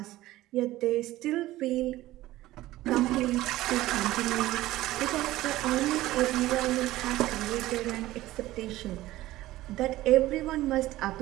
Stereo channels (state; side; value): quieter; left; 16.4 dB